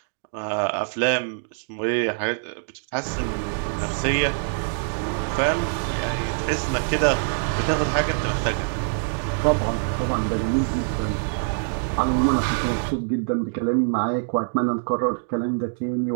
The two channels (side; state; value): left; silent; digital silence